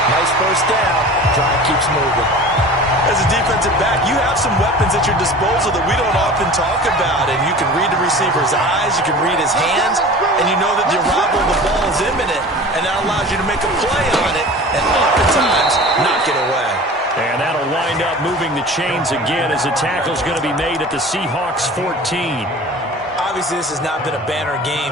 nice first down. Drive keeps moving. As a defensive back, you have some weapons at your disposal that we don't often talk about. And you can read the receiver's eyes, you can read his hands, and you know that the arrival of the ball is imminent. And that allows you to make a play on it and oftentimes knock it away. And that'll wind up moving the chains again as the tackle's going to be made at the Seahawks 14. Obviously, this has not been a banner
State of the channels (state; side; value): normal; both; correlation 0.39